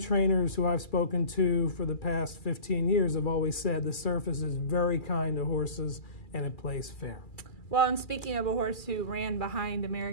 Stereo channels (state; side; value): late; right; 2.4 ms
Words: who I've spoken to for the past 15 years have always said the surface is very kind to horses and it plays fair. Well, and speaking of a horse who ran behind